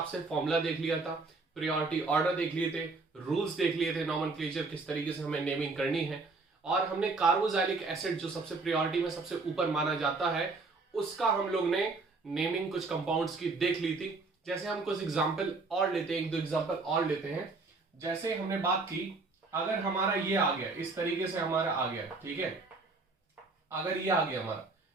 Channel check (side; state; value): left; quieter; 3.7 dB